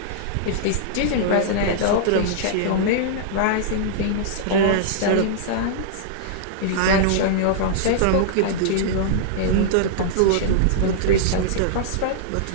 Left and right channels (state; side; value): different; both; correlation -0.02